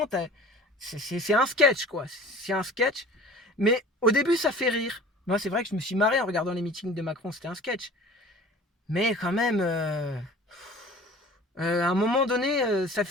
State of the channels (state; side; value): normal; both; correlation 0.44